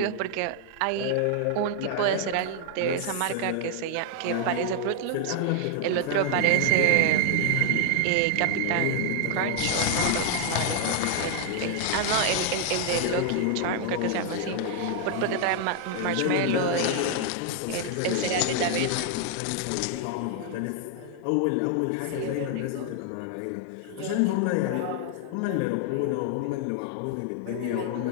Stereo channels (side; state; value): both; different; correlation 0.00